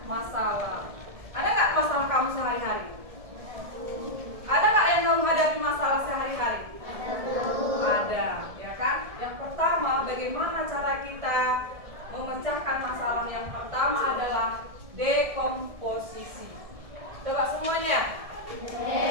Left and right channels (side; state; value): left; late; 1.7 ms